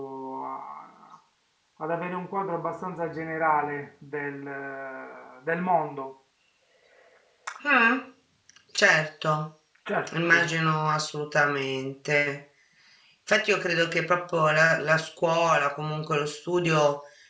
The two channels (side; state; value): both; identical; correlation 1.00